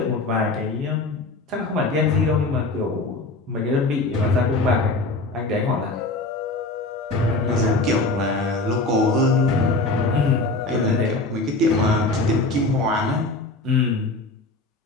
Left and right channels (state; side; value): quieter; right; 3.1 dB